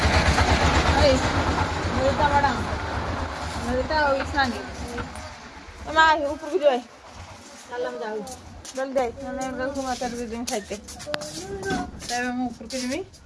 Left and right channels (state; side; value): identical; both; correlation 1.00